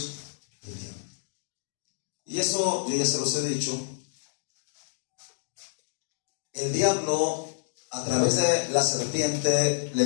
del diablo. Y eso yo ya se los he dicho. El diablo, a través de la serpiente,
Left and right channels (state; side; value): silent; right; digital silence